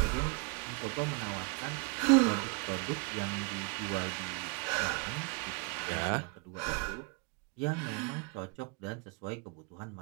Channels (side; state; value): left; quieter; 31.9 dB